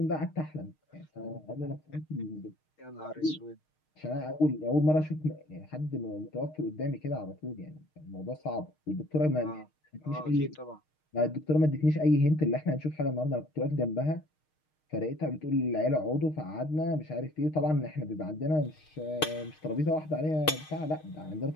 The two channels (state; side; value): late; right; 6.5 ms